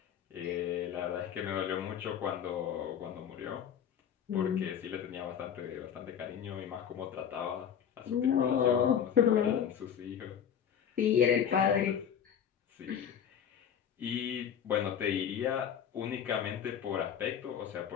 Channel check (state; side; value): quieter; right; 8.6 dB